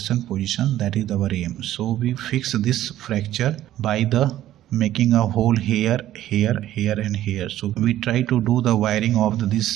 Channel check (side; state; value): left; quieter; 13.3 dB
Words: position, that is our aim. So we fix this fracture by the making a hole here, here, here and here. So we try to do the wiring of this